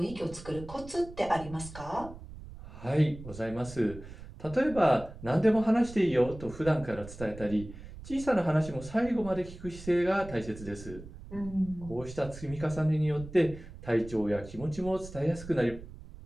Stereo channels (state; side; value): noise; right; rumble, 14 dB below the sound